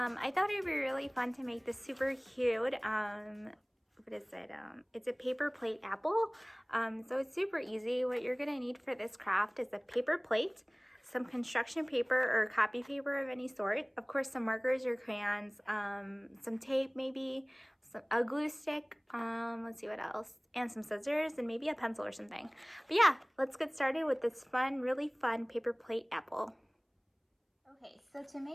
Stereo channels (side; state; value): both; identical; correlation 1.00